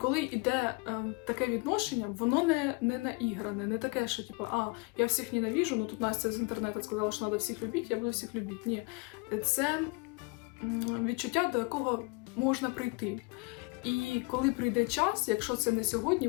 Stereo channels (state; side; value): quieter; right; 28.7 dB